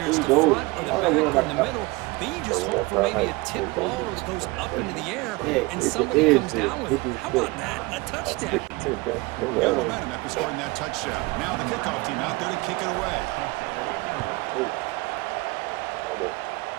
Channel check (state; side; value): quieter; left; 23.7 dB